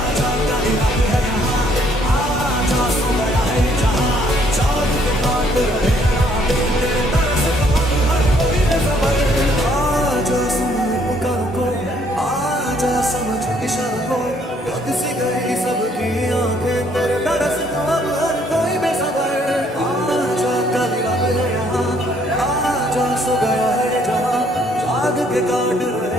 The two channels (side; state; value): both; normal; correlation 0.65